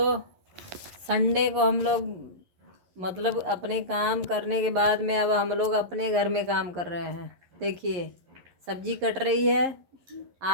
संडे को हम लोग मतलब अपने काम करने के बाद में अब हम लोग अपने घर में काम कर रहे हैं। देखिए, सब्जी कट रही है,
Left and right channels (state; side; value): late; left; 11 ms